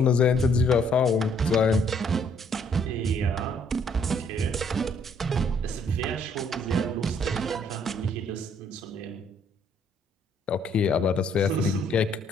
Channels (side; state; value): both; normal; correlation 0.65